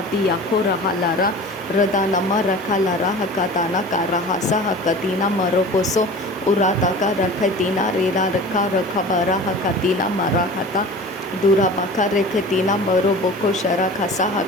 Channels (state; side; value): normal; both; correlation 0.38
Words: आखो रहा Lara रदानमा रखा Lara हकाताना कारा हसा हकतीना मरोकोसो उराता का रखतीना रेला रखा रखा बरा हकतीना मरा खता दूरा बाका रेखतीना मरो बोको शरा खसा